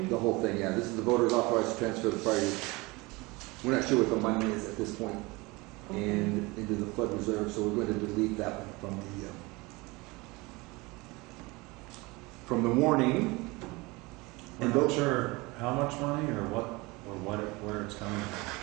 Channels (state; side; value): quieter; left; 24.0 dB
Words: The whole thing, yeah. This is the voters authorized to transfer the prior. We're not sure what the money is at this point, and into the flood reserve, so we're going to delete that one from the warning. We're not sure how much money or where it's coming from.